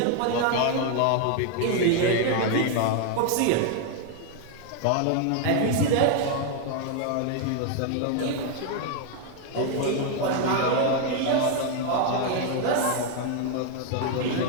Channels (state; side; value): different; both; correlation 0.01